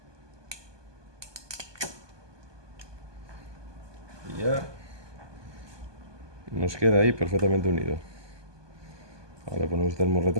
Y ya nos queda ahí perfectamente unido. Ahora ponemos el termo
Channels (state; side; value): late; left; 1.2 ms